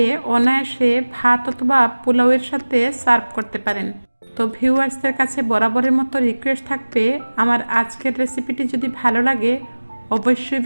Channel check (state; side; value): inverted; both; correlation -1.00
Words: অনায়াসে ভাত অথবা পোলাওয়ের সাথে সার্ভ করতে পারেন। তো ভিউয়ার্সদের কাছে বরাবরের মতো রিকোয়েস্ট থাকবে, আমার আজকের রেসিপিটি যদি ভালো লাগে অবশ্যই